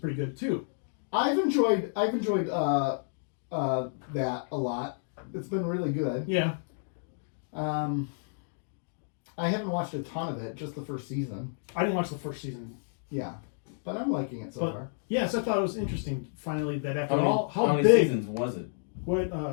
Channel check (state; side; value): silent; right; digital silence